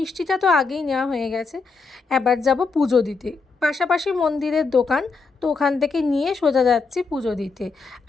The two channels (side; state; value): right; quieter; 4.4 dB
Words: তো আগেই নেওয়া হয়ে গেছে, এবার যাব পুজো দিতে। পাশাপাশি মন্দিরের দোকান, তো ওখান থেকে নিয়ে সোজা যাচ্ছি পুজো দিতে।